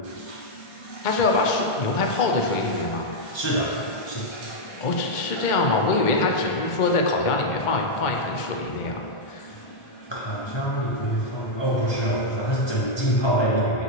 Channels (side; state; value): right; late; 1.4 ms